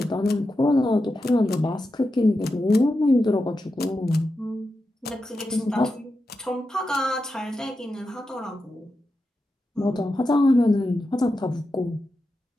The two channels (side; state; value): both; normal; correlation 0.89